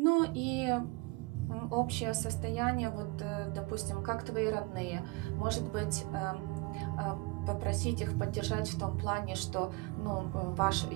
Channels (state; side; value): quieter; left; 25.1 dB